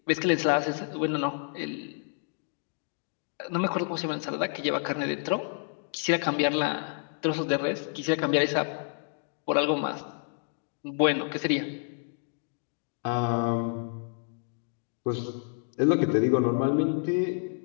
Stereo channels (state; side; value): silent; right; 56 dB below the other